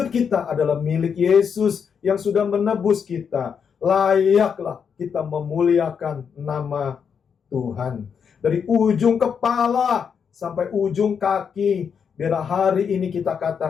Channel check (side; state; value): right; quieter; 6.8 dB